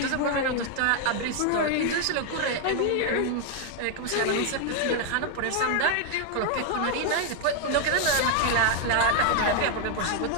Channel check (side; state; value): both; different; correlation 0.01